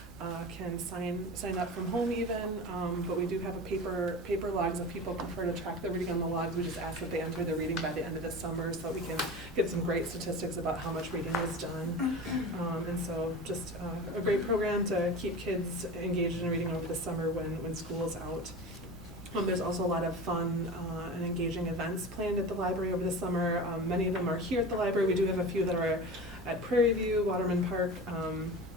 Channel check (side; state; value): both; normal; correlation 0.31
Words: can sign up from home even, but we do have a paper logs if people prefer to track the reading on the logs. We just ask that they enter their reading by the end of the summer so that we can get some great statistics about how much reading is done. And so just a great program to keep kids engaged in reading over the summer when school's out. There's also a lot of fun and engaging events planned at the library over the summer. Many of them are here at the library. We do have a few that are at Prairie View, Waterman Park,